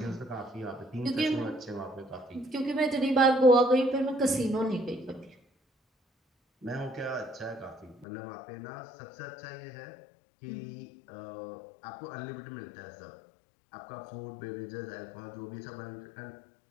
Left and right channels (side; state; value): right; drops out; at 8.1 s